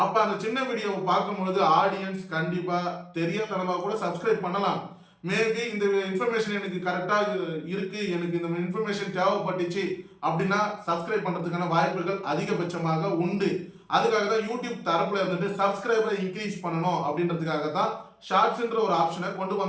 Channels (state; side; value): identical; both; correlation 1.00